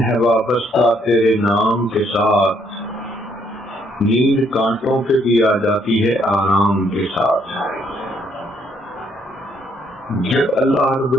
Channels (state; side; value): normal; both; correlation 0.69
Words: وابستہ تیرے نام کے ساتھ، نیند کانٹوں پہ بھی آ جاتی ہے آرام کے ساتھ۔ جب اللہ رب